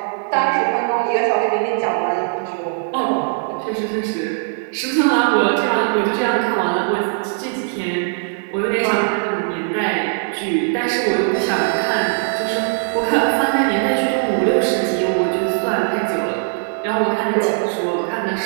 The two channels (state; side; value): silent; left; digital silence